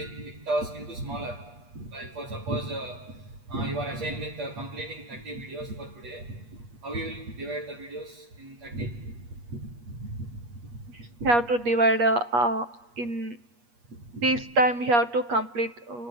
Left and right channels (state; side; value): late; left; 8.4 ms